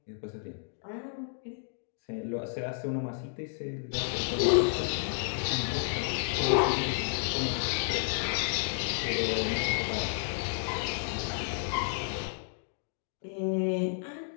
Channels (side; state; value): right; silent; digital silence